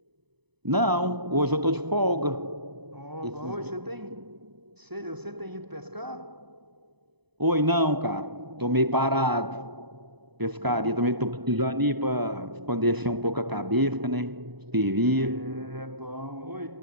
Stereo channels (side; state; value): left; late; 0.99 ms